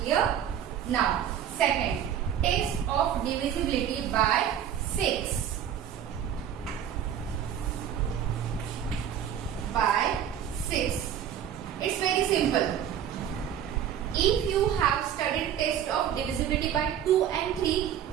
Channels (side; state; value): left; quieter; 9.5 dB